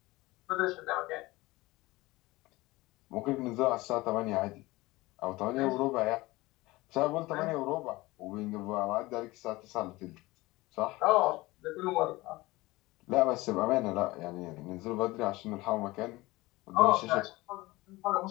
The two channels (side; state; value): right; quieter; 20.4 dB